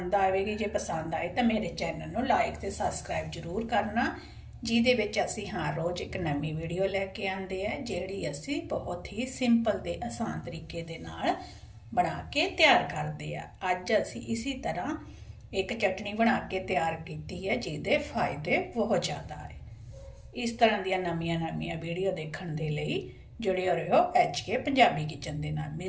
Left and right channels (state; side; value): identical; both; correlation 1.00